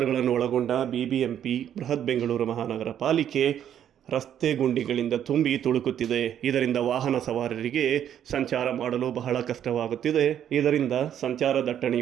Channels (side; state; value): left; quieter; 9.9 dB